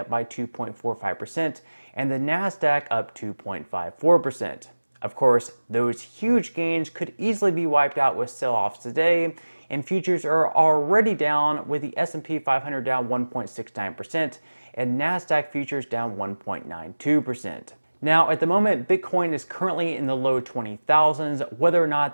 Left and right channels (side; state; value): both; inverted; correlation -1.00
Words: by 2.45% and the Nasdaq up 2.54%. Of course, those huge gains could easily be wiped out with sell-offs today, and futures are already down, with the S&P 500 down 1.69% and Nasdaq futures down 1.92%. Now, at the moment, Bitcoin is currently in the low 20,000s. Whether or not